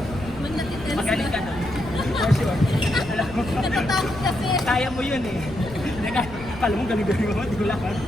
Magaling ka doon. For sure. Alam mo, Natatakot kasi. kaya mo yun eh. Kala mo galing-galing mo, di ko lang.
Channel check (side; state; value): left; noise; rumble, 14 dB below the sound